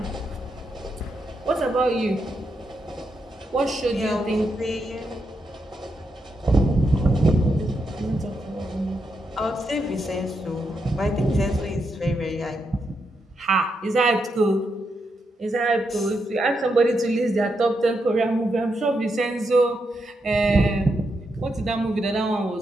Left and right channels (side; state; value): both; normal; correlation 0.83